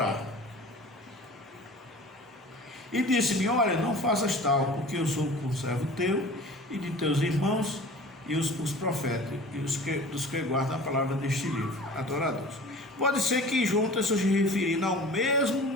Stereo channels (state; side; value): normal; both; correlation 0.41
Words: E disse-me, olha, não faças tal, porque eu sou conservo teu e de teus irmãos e os profetas, e dos que guardam a palavra deste livro, adoradores. Pode ser que João esteja se referindo ao mesmo